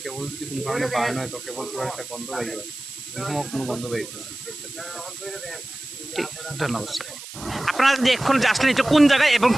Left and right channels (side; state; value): right; noise; hiss, 13 dB below the sound